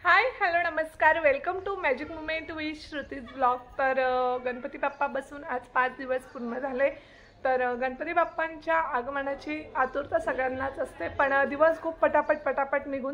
हाय hello नमस्कार, welcome to magic moment with Shruti's blog. तर गणपती बाप्पा बसून आज 5 दिवस पूर्ण झाले। तर गणपती बाप्पांच्या आगमनाची आतुरता सगळ्यांनाच असते, पण दिवस खूप पटापट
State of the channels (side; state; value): both; identical; correlation 1.00